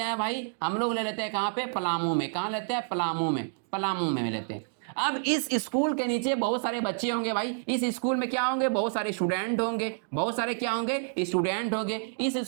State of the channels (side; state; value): left; silent; digital silence